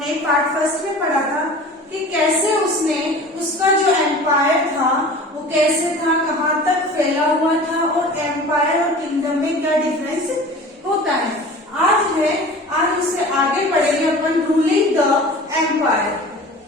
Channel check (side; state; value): both; normal; correlation 0.40